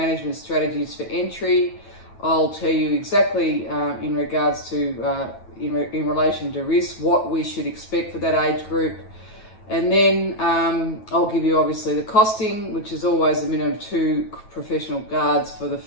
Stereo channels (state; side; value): late; right; 9.3 ms